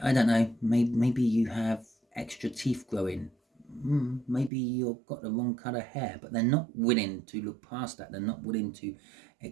know, maybe you have extra teeth growing, maybe you've got the wrong colour hair, but they're not willing to look past that. They're not willing to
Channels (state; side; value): drops out; left; at 4.5 s